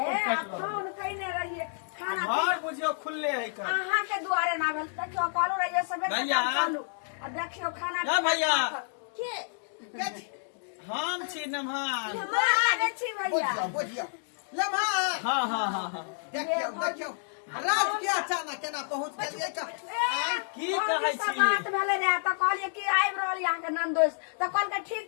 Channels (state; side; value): silent; right; digital silence